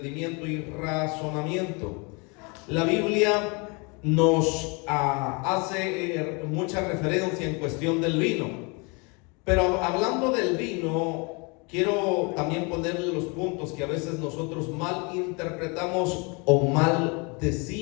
y razonamiento. La Biblia nos hace mucha referencia en cuestión del vino, pero hablando del vino, quiero también ponerle los puntos que a veces nosotros mal interpretamos o mal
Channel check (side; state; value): right; quieter; 30.8 dB